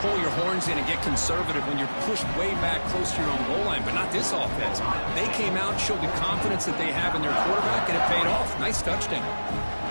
your horns in and get conservative when you're pushed way back close to your own goal line, but not this offense. They came out, showed the confidence that they have in their quarterback, and it paid off. Nice touchdown.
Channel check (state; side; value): inverted; both; correlation -1.00